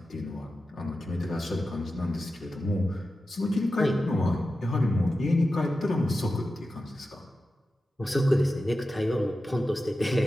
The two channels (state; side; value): normal; both; correlation 0.92